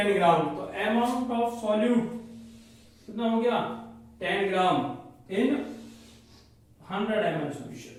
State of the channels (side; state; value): both; identical; correlation 1.00